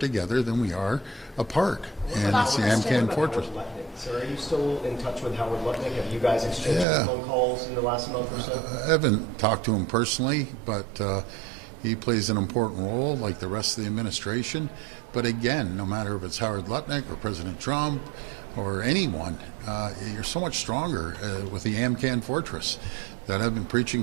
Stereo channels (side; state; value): left; drops out; at 6.9 s